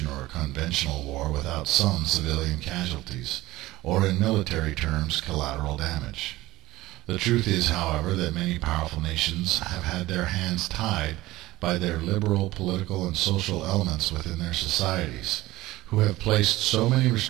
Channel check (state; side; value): quieter; left; 17.8 dB